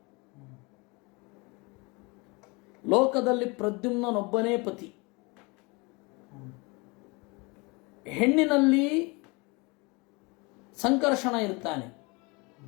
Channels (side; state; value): right; quieter; 27.5 dB